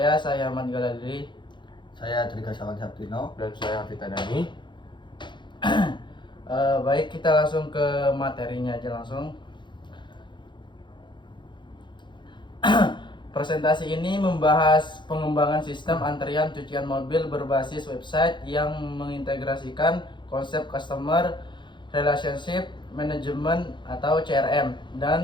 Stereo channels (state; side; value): late; right; 0.23 ms